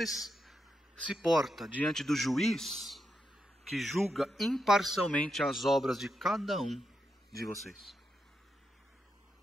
se porta diante do juiz que julga imparcialmente as obras de cada um de vocês?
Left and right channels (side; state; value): both; normal; correlation 0.84